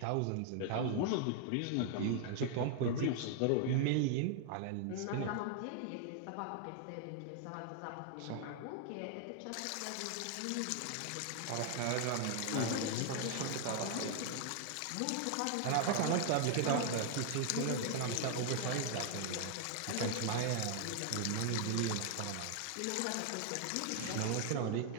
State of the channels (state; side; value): different; both; correlation 0.00